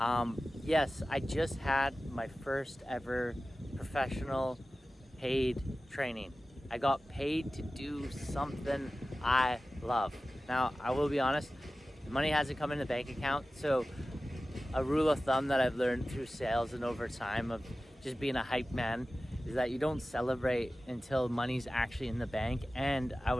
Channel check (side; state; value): both; normal; correlation 0.96